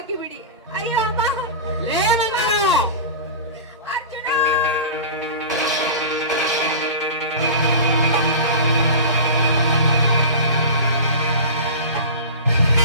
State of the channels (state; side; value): inverted; both; correlation -0.31